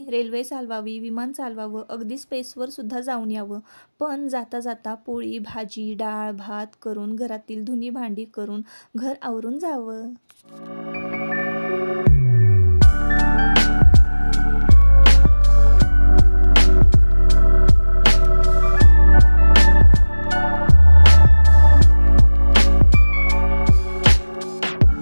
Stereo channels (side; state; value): both; inverted; correlation -1.00